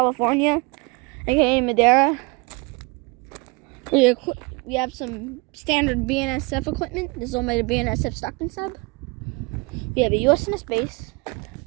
aka Madera. We have some standard BNSF equipment. This is all made of BNSF Stockton sub. We have a USNS base.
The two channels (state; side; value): quieter; left; 28.5 dB